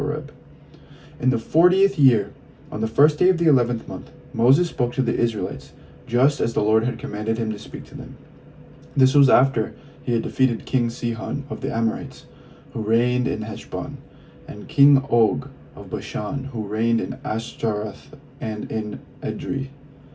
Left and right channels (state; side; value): identical; both; correlation 1.00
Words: In the 40th year, on the first day of the 11th month, Moses spoke to the Israelites, just as the Lord had commanded him to speak to them. This was after he had defeated King Sihon of the Amorites, who reigned in Heshbon, and King Og of Bashan, who reigned in Ashtaroth and in Edrei.